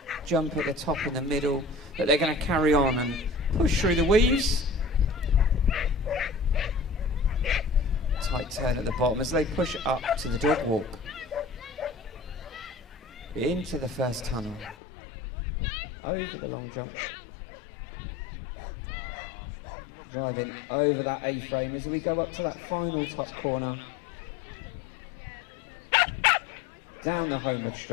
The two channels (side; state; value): right; drops out; at 14.8 s